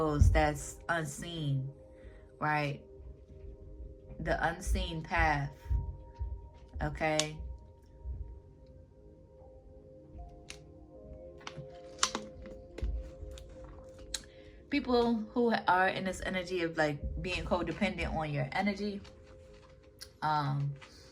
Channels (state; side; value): identical; both; correlation 1.00